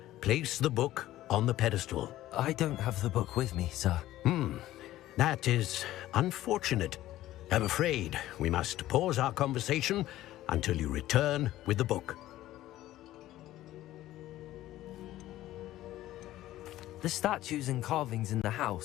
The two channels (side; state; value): right; quieter; 14.8 dB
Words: Place the book on the pedestal. I don't have the book with me, sir. That is unfortunate. I'm afraid we must pause our conversation until you return with the book. The statues and carvings in the